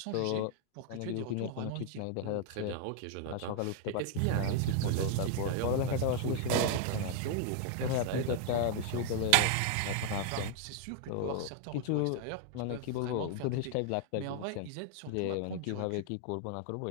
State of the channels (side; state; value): both; different; correlation 0.00